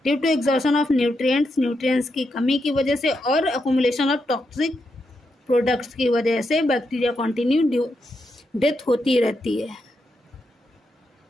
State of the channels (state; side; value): normal; both; correlation 0.83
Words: due to exhaustion of nutrients की कमी की वजह से और अकोमुलेशन ऑफ टॉक्सिक प्रोडक्ट्स की वजह से बैक्टीरिया कॉन्टिन्यू डेथ होती रहती है।